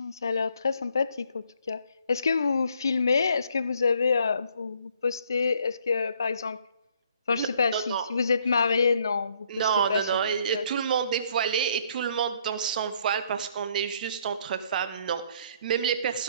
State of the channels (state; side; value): inverted; both; correlation -0.65